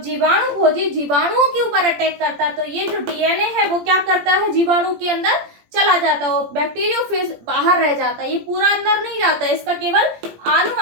जीवाणु भोजी जीवाणुओं के ऊपर अटैक करता है तो ये जो डीएनए है वो क्या करता है? जीवाणु के अंदर चला जाता है, वो बैक्टीरियोफेज बाहर रह जाता है, ये पूरा अंदर नहीं जाता है। इसका केवल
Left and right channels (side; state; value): left; late; 17 ms